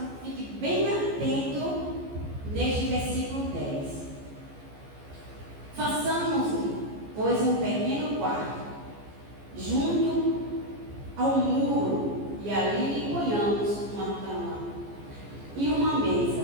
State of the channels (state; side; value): late; left; 14 ms